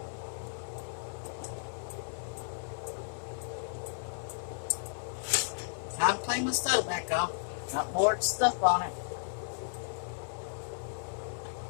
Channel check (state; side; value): silent; right; 55 dB below the other